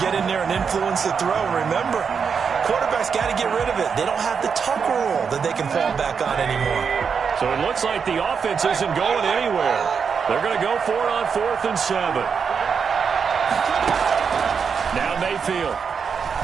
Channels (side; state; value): left; quieter; 6.2 dB